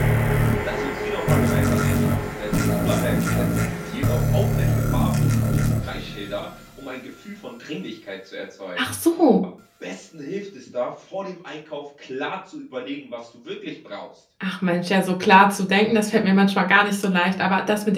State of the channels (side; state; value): both; identical; correlation 1.00